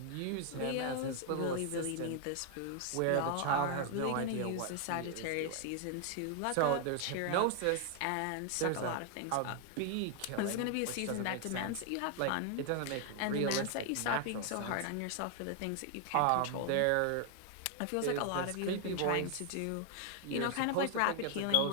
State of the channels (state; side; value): different; both; correlation 0.00